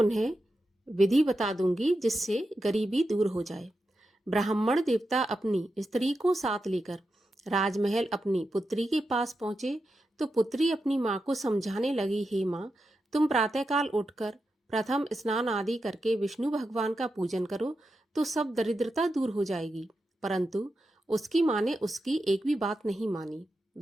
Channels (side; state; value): both; normal; correlation 0.88